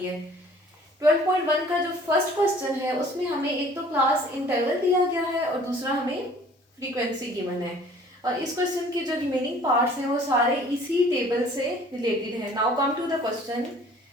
है। 12.1 का जो फर्स्ट क्वेश्चन है उसमें हमें एक तो क्लास इंटरवल दिया गया है और दूसरा हमें फ्रीक्वेंसी गिवन है और इस क्वेश्चन के जो रिमेनिंग पार्ट्स हैं वो सारे इसी टेबल से रिलेटेड है। Now come to the question.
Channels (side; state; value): both; normal; correlation 0.52